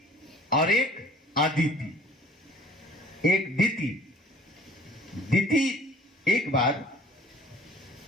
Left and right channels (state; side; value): normal; both; correlation 0.51